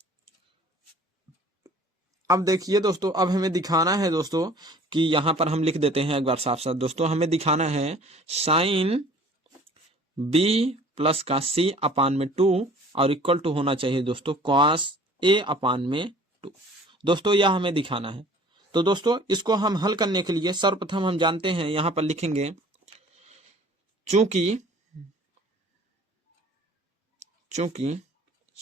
अब देखिए दोस्तों, अब हमें दिखाना है दोस्तों कि यहाँ पर हम लिख देते हैं एक बार साफ साफ दोस्तों। हमें दिखाना है साइन B+C/2 और इक्वल टू होना चाहिए दोस्तों cos A/2। दोस्तों यह हमें दिखाना है। तो दोस्तों इसको हम हल करने के लिए सर्वप्रथम हम जानते हैं, यहां पर लिखेंगे चूंकि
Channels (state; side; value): normal; both; correlation 0.50